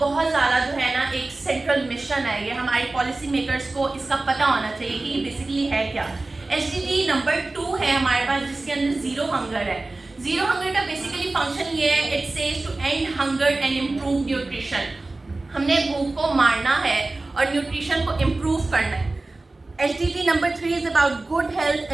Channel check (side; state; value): left; quieter; 3.1 dB